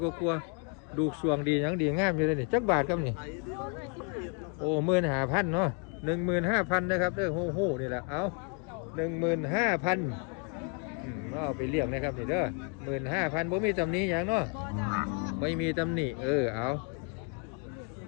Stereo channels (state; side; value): quieter; right; 36.6 dB